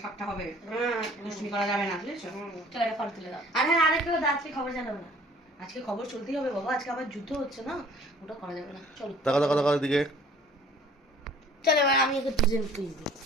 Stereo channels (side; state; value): both; normal; correlation 0.52